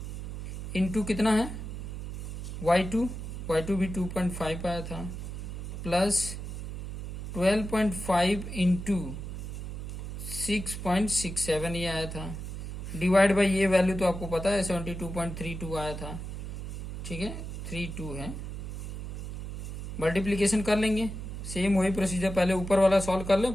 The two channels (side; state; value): right; noise; hum, 7 dB below the sound